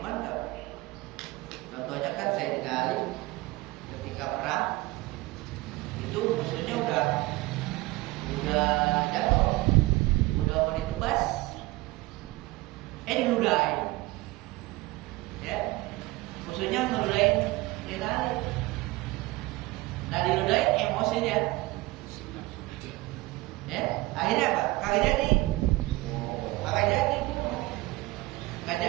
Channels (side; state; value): left; quieter; 20.4 dB